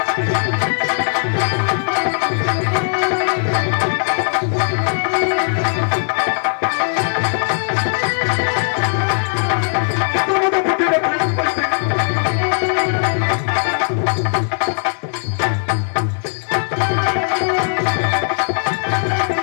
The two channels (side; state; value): right; silent; 60 dB below the other